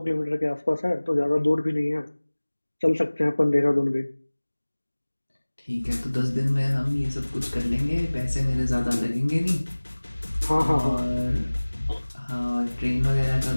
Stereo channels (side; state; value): both; inverted; correlation -1.00